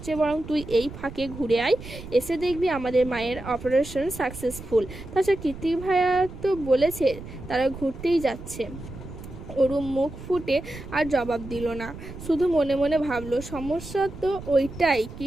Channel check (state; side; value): noise; right; rumble, 13 dB below the sound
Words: চেয়ে বরং তুই এই ফাঁকে ঘুরে আয়, এসে দেখবি আমাদের মায়ের অপারেশন সাকসেসফুল। তাছাড়া কৃত্তিক ভাইয়া তো বলেছে তারা ঘুরতেই যাচ্ছে। অরু মুখ ফুটে আর জবাব দিল না, শুধু মনে মনে ভাবলো, সমস্যা তো ওইটাই,